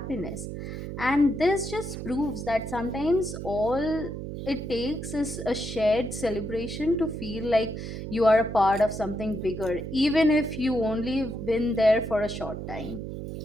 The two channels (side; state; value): right; noise; hum, 7 dB below the sound